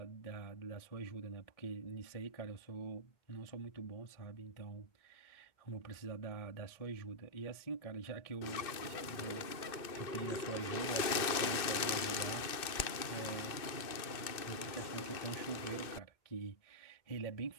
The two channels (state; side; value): late; right; 2.6 ms